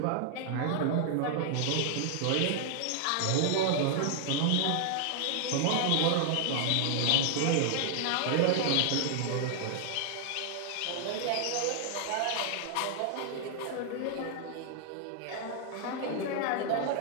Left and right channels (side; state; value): both; different; correlation 0.00